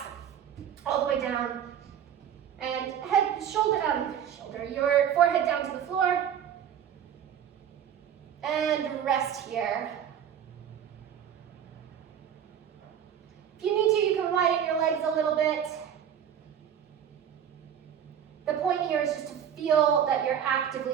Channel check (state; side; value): quieter; left; 9.0 dB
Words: all the way down. And head, your forehead down to the floor. And rest here. If you need to, you can widen your legs a little bit. The point here is just to feel that you're